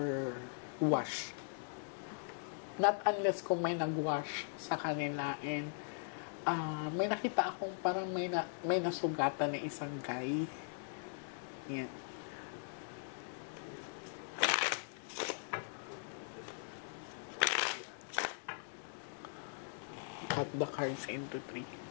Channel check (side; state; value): right; silent; digital silence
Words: wash. Not unless kung may nag-wash sa kanila. And may nakita akong parang may nasugatan na isang guy. Yan. Cut the cards into 3.